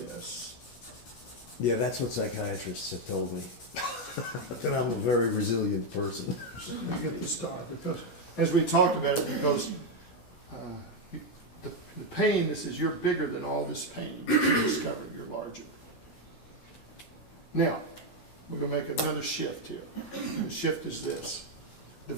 Yeah, that's what psychiatrists have told me. That I'm a very resilient person. You get the star because, as we talked about it, because the pain, this is, you're bigger than all this pain. You discovered you're larger. Now, we're going to make another shift here. The shift is this.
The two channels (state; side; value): late; right; 16 ms